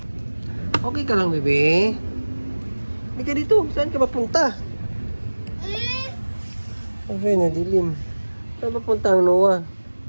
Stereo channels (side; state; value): both; inverted; correlation -1.00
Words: Okay ka lang, bebe? Hindi ka dito. Saan ka mapunta? Okay, nadilim. Saan mapunta ang Noah?